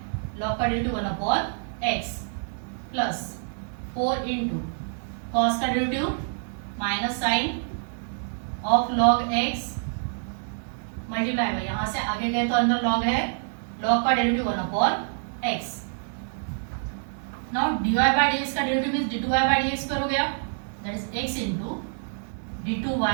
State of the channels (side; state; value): left; silent; digital silence